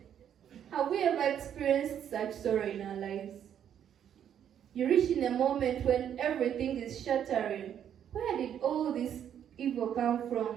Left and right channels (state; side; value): quieter; left; 9.4 dB